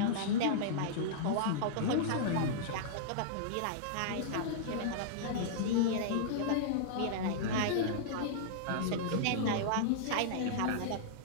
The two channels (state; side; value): different; both; correlation -0.02